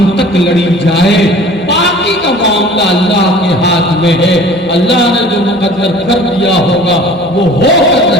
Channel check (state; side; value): normal; both; correlation 0.46